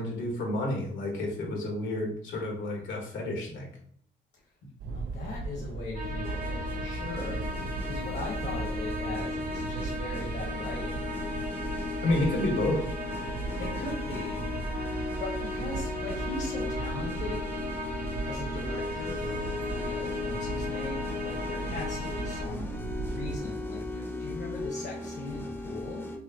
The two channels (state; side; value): normal; both; correlation 0.59